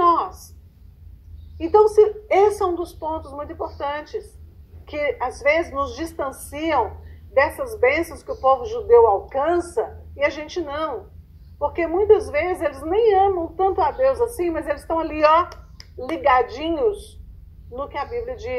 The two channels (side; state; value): both; identical; correlation 1.00